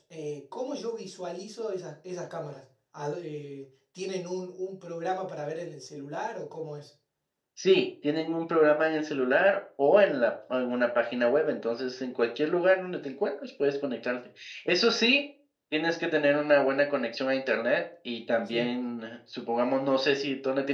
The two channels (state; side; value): identical; both; correlation 1.00